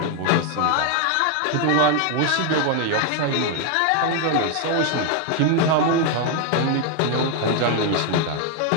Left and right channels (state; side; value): different; both; correlation 0.01